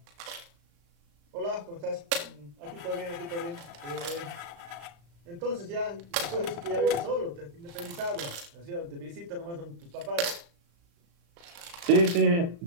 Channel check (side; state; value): left; late; 35 ms